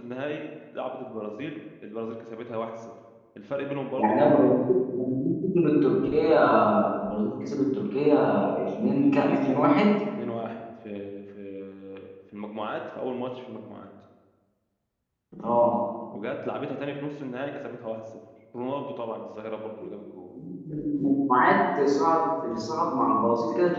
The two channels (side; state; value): both; identical; correlation 1.00